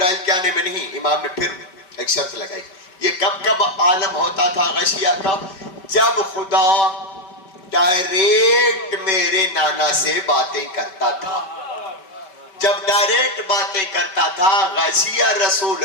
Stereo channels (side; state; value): right; late; 5.2 ms